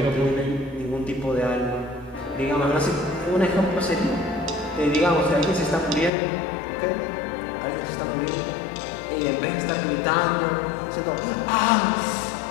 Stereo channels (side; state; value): right; drops out; at 6.1 s